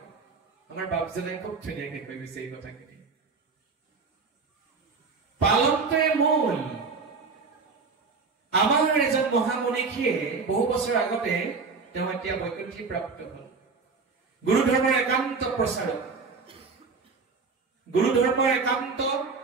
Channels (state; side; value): quieter; left; 4.7 dB